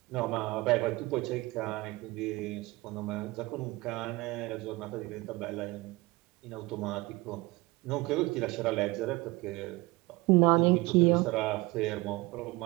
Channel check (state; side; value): quieter; left; 22.0 dB